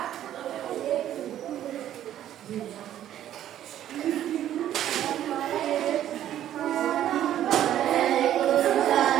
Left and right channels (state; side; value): quieter; left; 11.6 dB